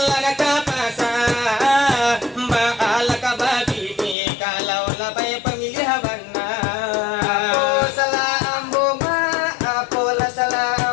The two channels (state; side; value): drops out; right; at 4.2 s